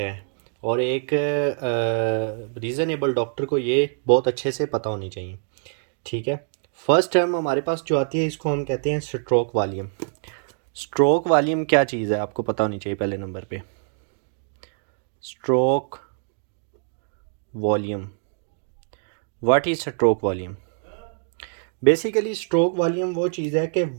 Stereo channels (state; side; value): silent; left; digital silence